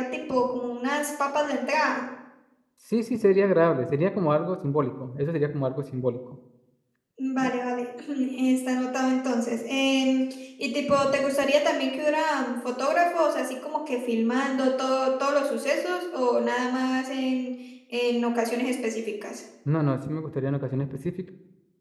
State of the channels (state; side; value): identical; both; correlation 1.00